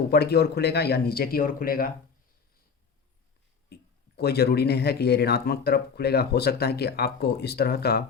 ऊपर की ओर खुलेगा या नीचे की ओर खुलेगा, कोई ज़रूरी नहीं है कि ये ऋणात्मक तरफ खुलेगा, हो सकता है कि आपको इस तरह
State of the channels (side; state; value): right; quieter; 5.8 dB